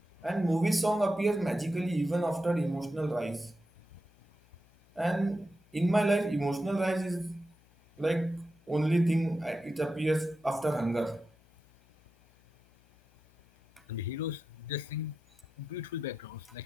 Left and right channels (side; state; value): left; noise; hum, 30 dB below the sound